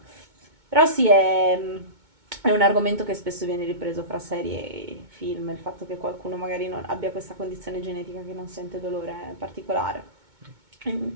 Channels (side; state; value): left; late; 2.2 ms